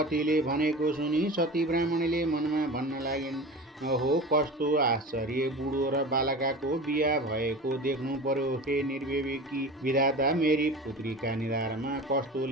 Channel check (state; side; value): normal; both; correlation 0.33